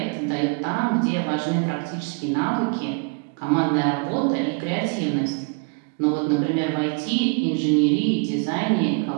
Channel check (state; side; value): quieter; left; 33.4 dB